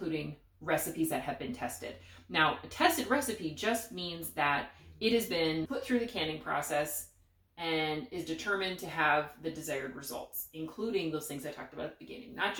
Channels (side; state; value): both; identical; correlation 1.00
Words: recipes that have been tested. Now, a tested recipe just means that it has been put through the canning process and is determined to have the desired results, including those things I talked about at the beginning. Not